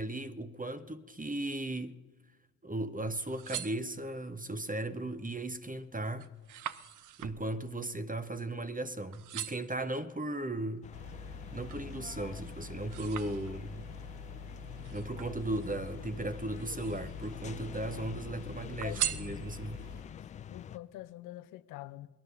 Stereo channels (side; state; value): both; normal; correlation 0.48